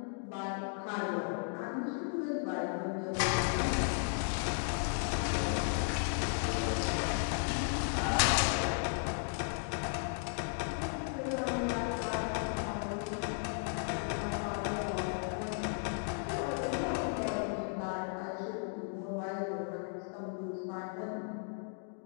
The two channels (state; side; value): silent; right; 54 dB below the other